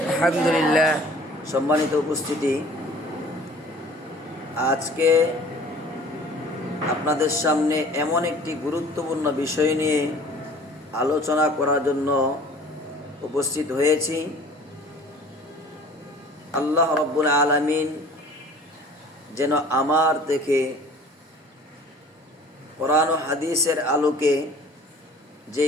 আলহামদুলিল্লাহ। সম্মানিত উপস্থিতি, আজকে আপনাদের সামনে এমন একটি গুরুত্বপূর্ণ বিষয় নিয়ে আলোচনা করার জন্য উপস্থিত হয়েছি। আল্লাহ রাব্বুল আলামিন যেন আমার থেকে কোরআন ও হাদিসের আলোকে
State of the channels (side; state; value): both; normal; correlation 0.48